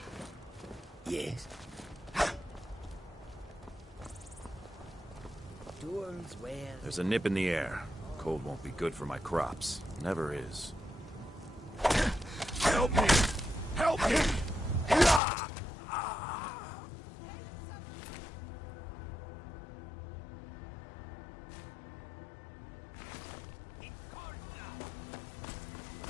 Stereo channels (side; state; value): right; drops out; at 15.2 s